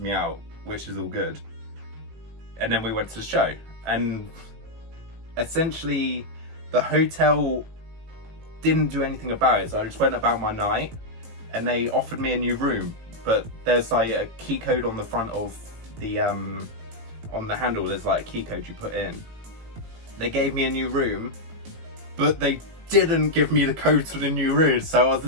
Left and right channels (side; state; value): left; late; 18 ms